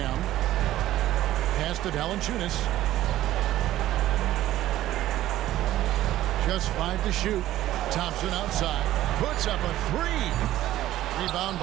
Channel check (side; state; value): left; quieter; 14.1 dB